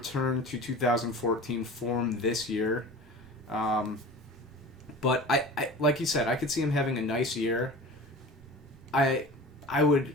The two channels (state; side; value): normal; both; correlation 0.36